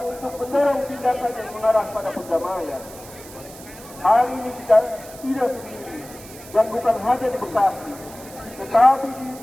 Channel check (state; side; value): noise; right; hiss, 18 dB below the sound